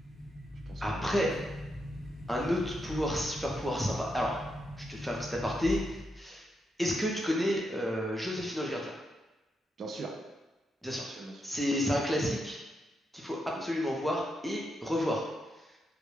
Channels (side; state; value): both; normal; correlation 0.83